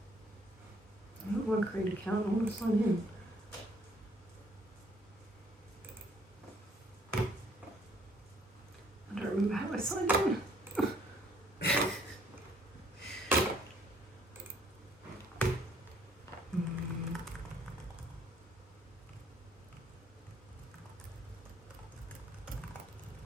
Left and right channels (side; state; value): both; normal; correlation 0.63